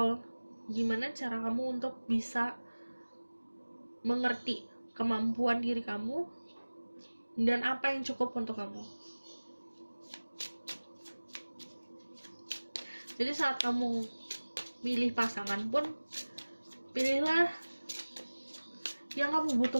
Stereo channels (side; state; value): both; inverted; correlation -1.00